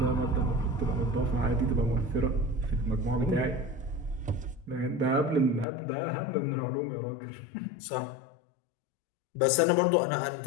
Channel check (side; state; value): right; drops out; at 5.7 s